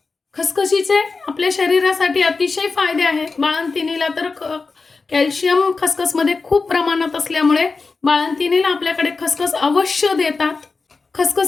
खसखशीचे आपल्या शरीरासाठी अतिशय फायदे आहेत. बाळंतिणीला तर कॅल्शियम खसखसमध्ये खूप प्रमाणात असल्यामुळे बाळंतिणीला आपल्याकडे खसखस अवश्य देतात.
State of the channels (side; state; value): right; quieter; 4.2 dB